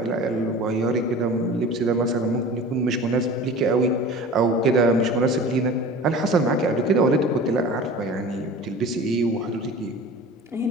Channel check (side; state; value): both; normal; correlation 0.38